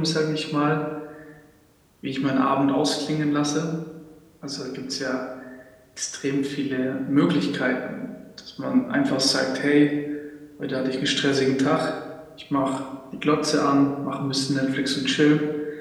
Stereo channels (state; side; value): identical; both; correlation 1.00